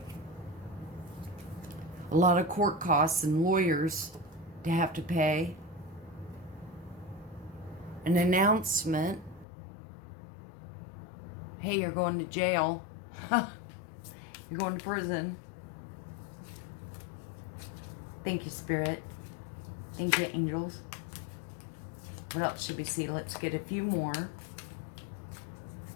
A lot of court costs and lawyers to have to pay. An announcement. Hey, you're going to jail. You're going to prison. Thank you, Spirit. Thank you, angels. What else should we see? Let's get a few more.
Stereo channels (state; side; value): drops out; right; at 9.5 s